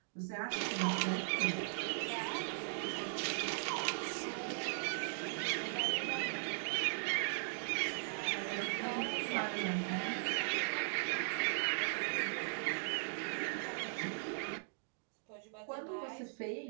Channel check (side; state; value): left; silent; digital silence